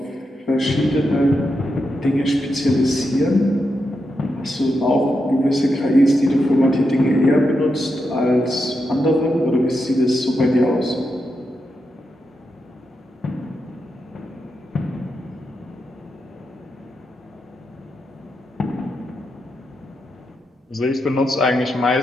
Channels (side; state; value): both; normal; correlation 0.85